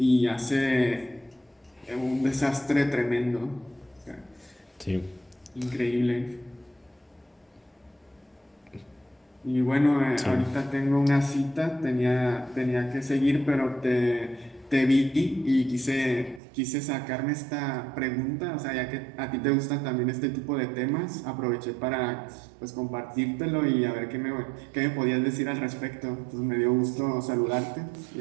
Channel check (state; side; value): drops out; left; at 16.4 s